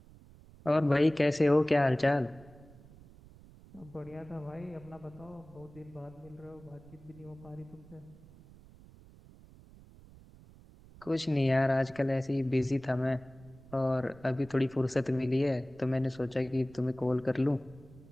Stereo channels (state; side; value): noise; right; rumble, 22 dB below the sound